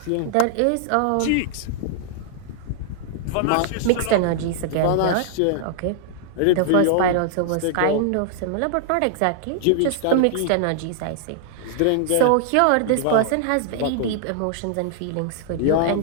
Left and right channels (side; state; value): both; different; correlation -0.01